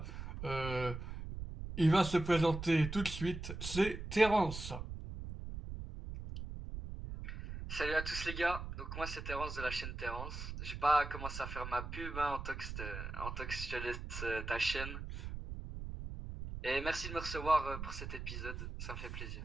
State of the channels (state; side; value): noise; right; rumble, 7 dB below the sound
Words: Euh, il va se présenter tout de suite, c'est Terence. Salut à tous les gars, donc moi c'est Terence de la chaîne Terence. J'ai pas commencé à faire ma pub, hein, Antox, je te laisse ta chaîne. Et merci de me recevoir pour cet épisode, ça me fait plaisir.